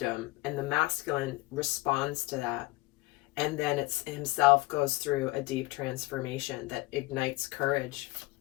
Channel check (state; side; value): quieter; right; 20.6 dB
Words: And the masculine responds to that. And then it's himself goes through a deep transformation that ignites courage.